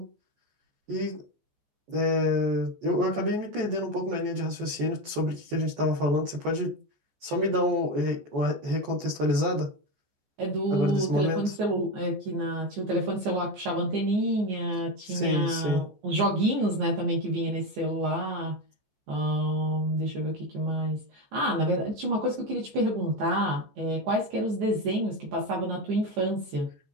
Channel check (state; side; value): late; left; 14 ms